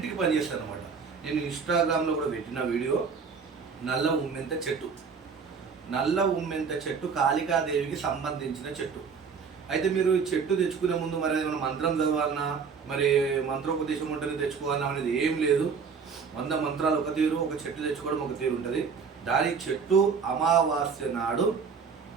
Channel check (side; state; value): left; quieter; 5.7 dB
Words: పనిచేస్తారు అనమాట. నేను ఇన్స్టాగ్రామ్లో కూడా పెట్టిన వీడియో నల్ల ఉమ్మెంత చెట్టు. నల్ల ఉమ్మెంత చెట్టు కాళికాదేవికి సంబంధించిన చెట్టు. అయితే మీరు ఈ చెట్టు తెచ్చుకునే ముందు మరి ఏమైనా మంత్రం చదవాలన్నా, మరి మంత్రోపదేశం ఉంటుంది తెచ్చుకోవాలన్నా అనేది ఏం లేదు. 100 మంత్రాలు ఒక తీరు, ఒక చెట్టు తెచ్చుకోవడం ఒక తీరు ఉంటుంది. దాని చెట్టు అమావాస్య నాడు